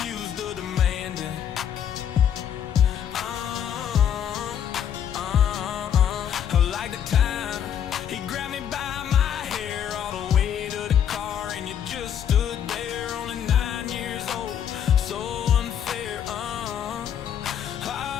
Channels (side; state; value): right; quieter; 9.2 dB